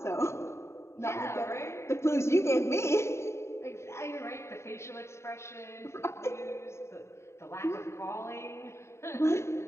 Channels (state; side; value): late; right; 0.13 ms